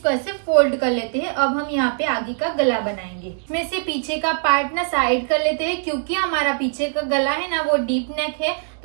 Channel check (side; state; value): left; silent; 64 dB below the other